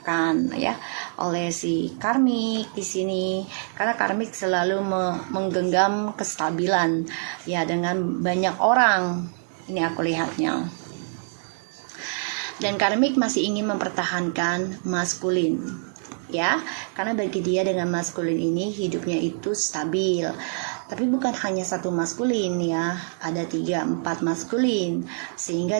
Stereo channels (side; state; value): left; silent; digital silence